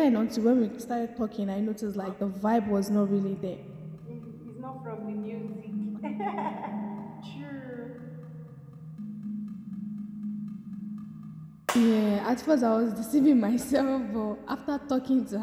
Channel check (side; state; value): both; identical; correlation 1.00